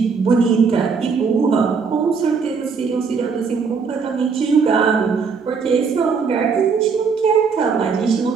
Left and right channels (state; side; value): quieter; left; 5.4 dB